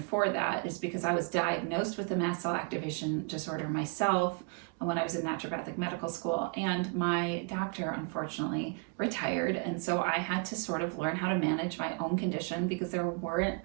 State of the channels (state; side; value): quieter; left; 34.7 dB